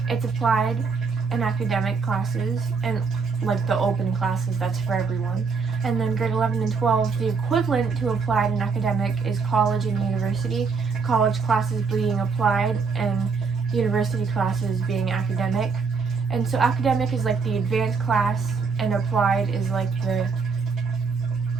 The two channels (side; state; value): left; quieter; 5.0 dB